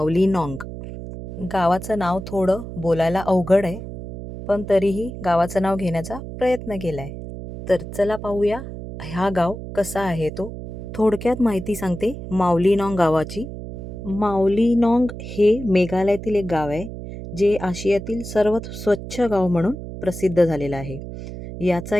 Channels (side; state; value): right; noise; hum, 10 dB below the sound